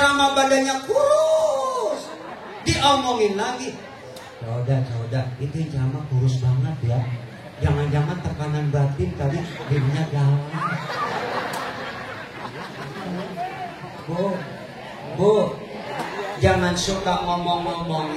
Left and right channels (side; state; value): both; identical; correlation 1.00